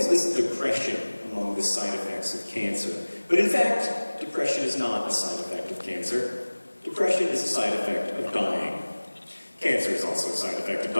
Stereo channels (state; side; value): inverted; both; correlation -1.00